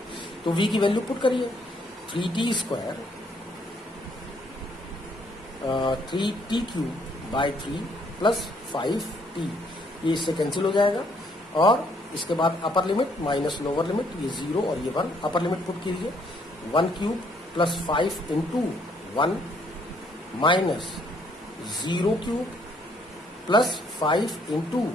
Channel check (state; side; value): normal; both; correlation 0.67